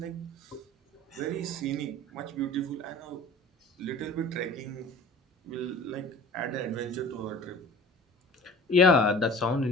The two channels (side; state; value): both; normal; correlation 0.43